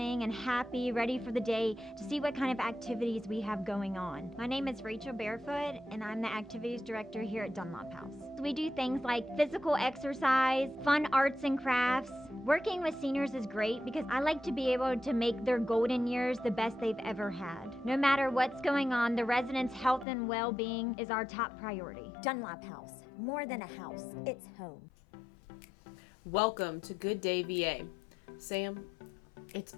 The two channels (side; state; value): right; drops out; at 20.1 s